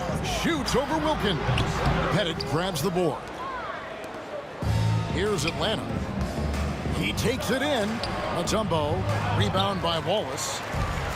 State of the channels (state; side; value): identical; both; correlation 1.00